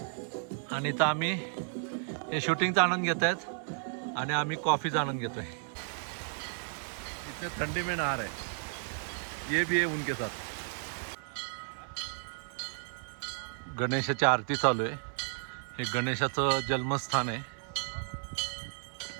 आणि इथं आम्ही हे शूटिंगचा आनंद घेत आहेत. आणि आम्ही कॉफीचा आनंद घेतोय. इथे थंडी में नहा रहे. ये भी है उनके साथ. गणेशाची आरती चालू आहे. हे गणेशाचं जन्मस्थान आहे.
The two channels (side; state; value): left; silent; 56 dB below the other